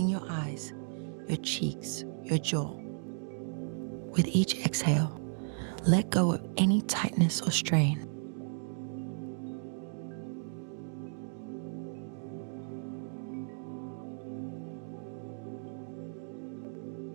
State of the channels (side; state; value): left; silent; digital silence